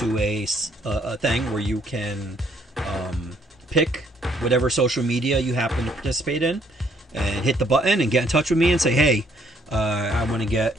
a thing where you can pick whatever social media you happen to participate in and hit the button and get in touch with me and say, hey, I want to get,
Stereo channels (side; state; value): both; normal; correlation 0.66